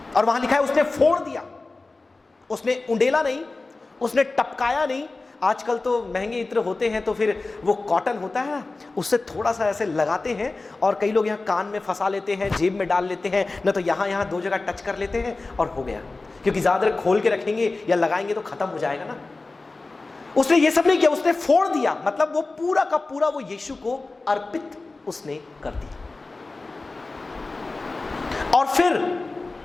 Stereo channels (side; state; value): right; quieter; 3.4 dB